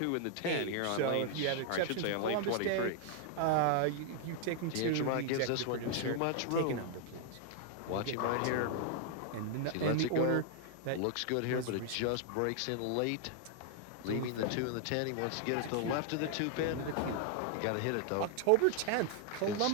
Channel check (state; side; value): different; both; correlation 0.00